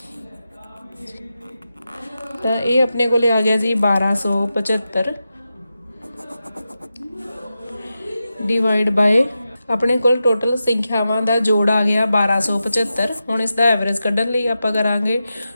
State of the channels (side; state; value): both; inverted; correlation -0.90